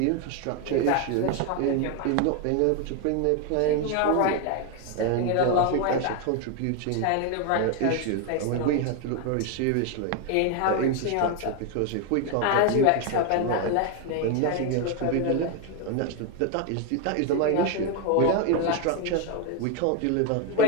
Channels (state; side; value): different; both; correlation 0.01